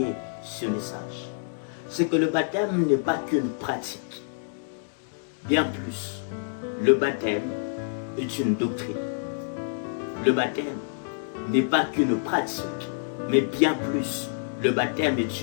ce message. C'est que le baptême n'est pas qu'une pratique. Bien plus, le baptême est une doctrine. Le baptême n'est pas qu'une pratique, mais bien plus, le baptême est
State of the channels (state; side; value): silent; right; digital silence